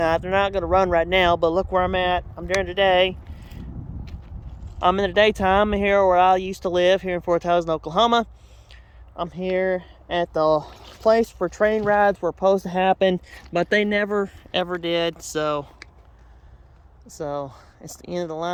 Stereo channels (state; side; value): identical; both; correlation 1.00